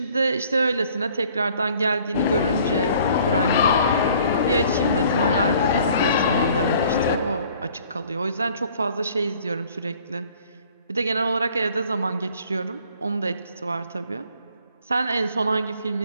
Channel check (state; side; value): inverted; both; correlation -0.56